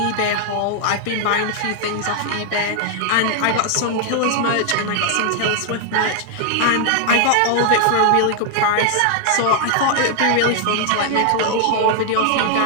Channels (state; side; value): different; both; correlation 0.00